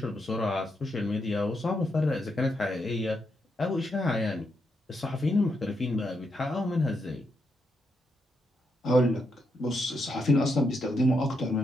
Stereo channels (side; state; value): both; normal; correlation 0.81